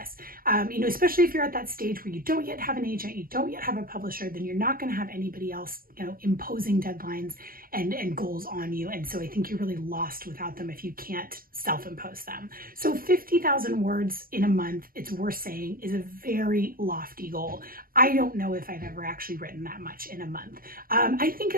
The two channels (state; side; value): late; left; 0.42 ms